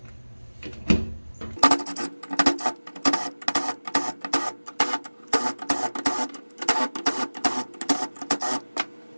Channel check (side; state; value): both; inverted; correlation -1.00